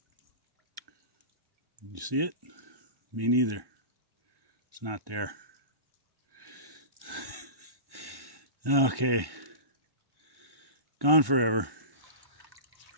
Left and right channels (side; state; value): left; late; 1.1 ms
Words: You see it? Me neither. It's not there. Okay. Gone forever.